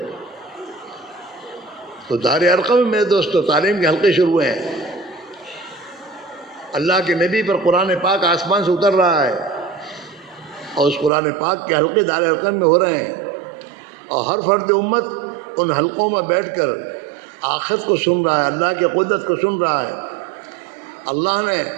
تو دار ارقم میں میرے دوستو تعلیم کے حلقے شروع ہوئے ہیں. اللہ کے نبی پر قرآن پاک آسمان سے اتر رہا ہے، اور اس قرآن پاک کے حلقے دار ارقم میں ہو رہے ہیں، اور ہر فرد امت ان حلقوں میں بیٹھ کر آخرت کو سن رہا ہے، اللہ کی قدرت کو سن رہا ہے. اللہ نے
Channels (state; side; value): drops out; left; at 11.1 s